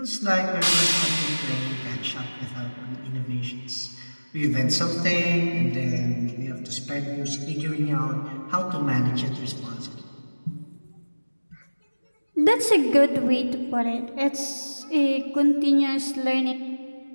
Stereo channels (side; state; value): both; inverted; correlation -1.00